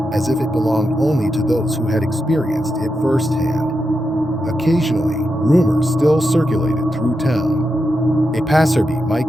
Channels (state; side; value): normal; both; correlation 0.87